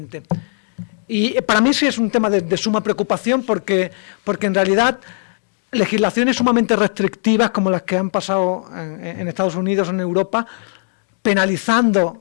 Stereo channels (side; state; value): right; silent; digital silence